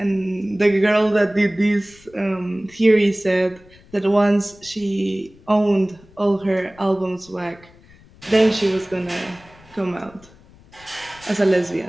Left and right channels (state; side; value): noise; left; rumble, 26 dB below the sound